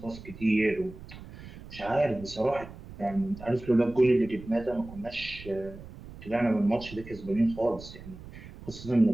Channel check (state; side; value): noise; right; rumble, 15 dB below the sound